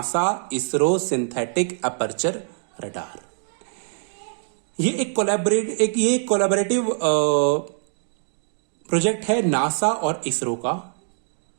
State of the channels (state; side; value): silent; left; 63 dB below the other